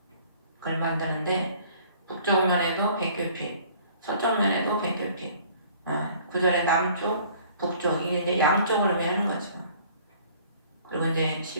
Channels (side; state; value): both; inverted; correlation -0.54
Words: 그걸 만드는데 북쪽 면에도 100규빗, 서쪽 면에도 100규빗. 구절의 남쪽, 북쪽 이게 이제 양쪽을 의미하는 거죠. 그리고 이제